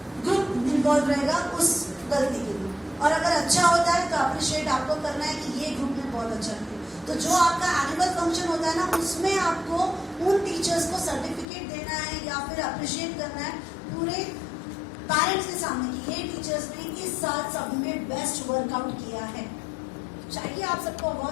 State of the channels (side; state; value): right; drops out; at 11.5 s